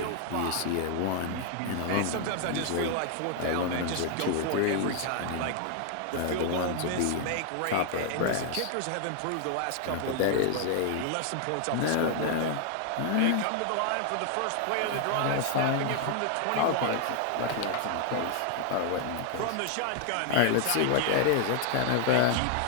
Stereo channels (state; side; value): different; both; correlation 0.00